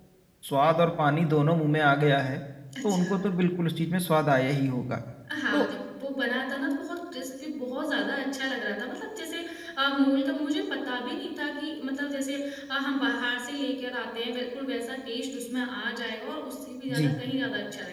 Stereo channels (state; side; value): identical; both; correlation 1.00